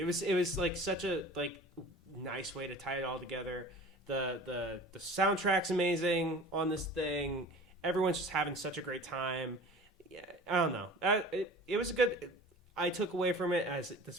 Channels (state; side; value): normal; both; correlation 0.41